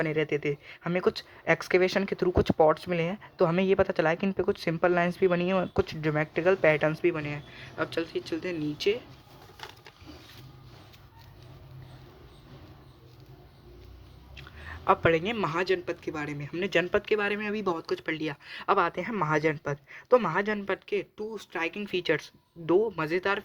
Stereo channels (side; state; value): both; identical; correlation 1.00